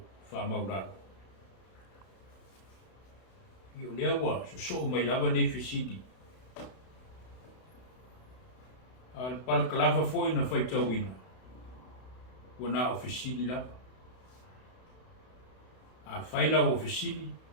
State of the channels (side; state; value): right; late; 32 ms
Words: wha mauraro. Io lea wa so mai lava nei fisidi. Al pal kalava foi na fai tauina. Wana ofisili lava. A faila ofisili.